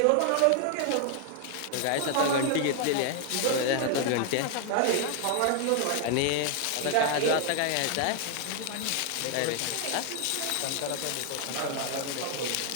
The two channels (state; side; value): different; both; correlation 0.00